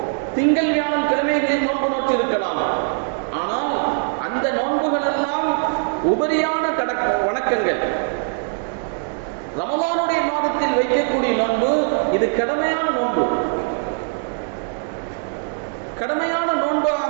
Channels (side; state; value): left; silent; 65 dB below the other